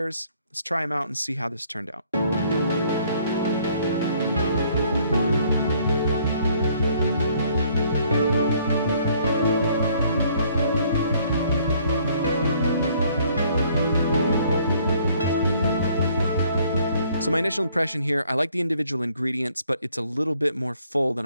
Let's try them out and see how this turned out. So my initial impression here, I like the individual ingredients, but it's a little bit more full than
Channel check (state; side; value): inverted; both; correlation -0.62